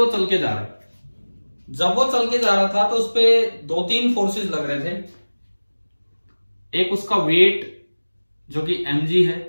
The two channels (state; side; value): inverted; both; correlation -1.00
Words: चल के जा रहा है। जब वो चल के जा रहा था तो उस पे 2-3 फोर्सेस लग रहे थे। एक उसका वेट जो कि mg है,